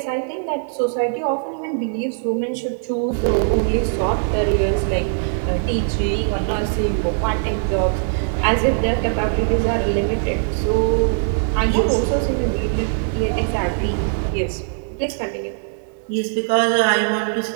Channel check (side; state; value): left; silent; 65 dB below the other